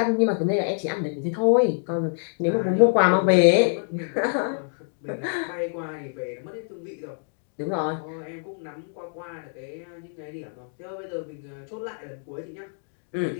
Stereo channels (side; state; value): right; silent; 61 dB below the other